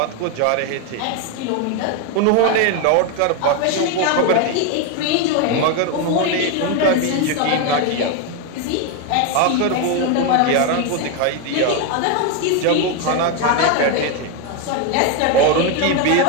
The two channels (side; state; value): both; different; correlation 0.02